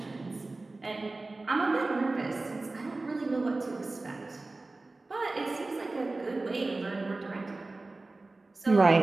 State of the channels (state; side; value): quieter; left; 3.2 dB